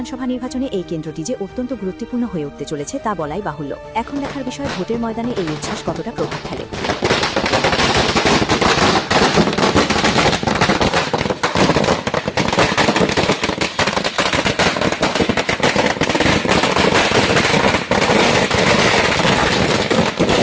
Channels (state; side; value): identical; both; correlation 1.00